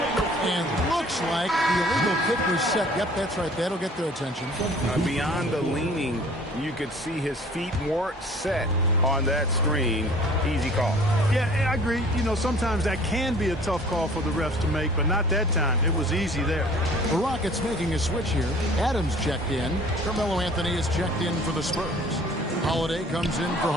looks like the illegal kick was set. Yep, that's right. That'll get their attention. Beyond the leaning, you could see his feet more set on that screen. Easy call. Yeah, I agree. You know, sometimes that can be a tough call for the refs to make, but not that time. It was easy there. The Rockets making a switch here. Adams checked in. Carmelo Anthony is checked in for the Spurs. Holiday comes in for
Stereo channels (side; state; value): both; normal; correlation 0.50